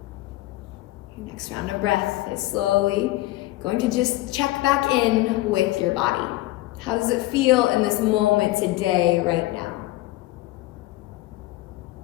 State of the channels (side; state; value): right; quieter; 17.9 dB